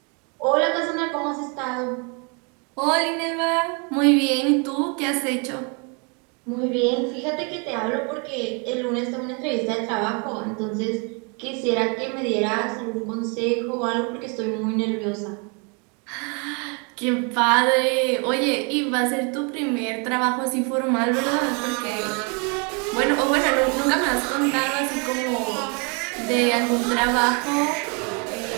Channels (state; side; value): quieter; left; 34.6 dB